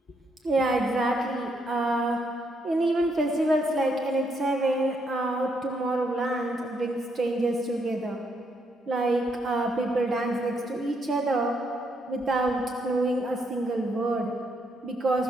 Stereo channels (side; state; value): both; normal; correlation 0.75